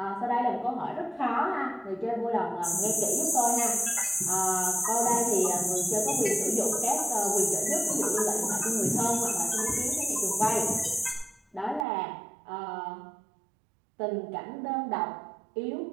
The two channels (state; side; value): drops out; left; at 11.9 s